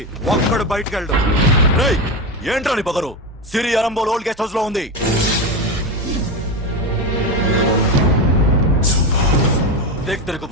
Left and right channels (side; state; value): both; normal; correlation 0.16